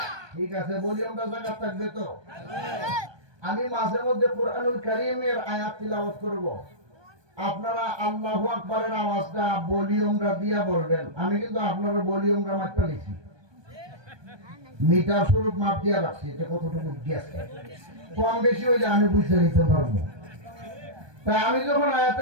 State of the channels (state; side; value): late; left; 1.2 ms